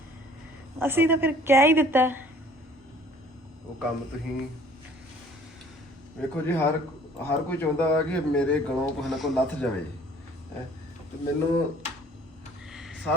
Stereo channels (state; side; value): normal; both; correlation 0.54